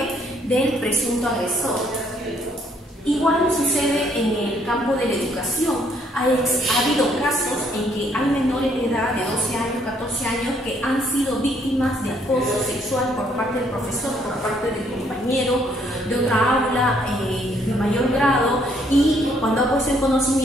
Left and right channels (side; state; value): both; normal; correlation 0.68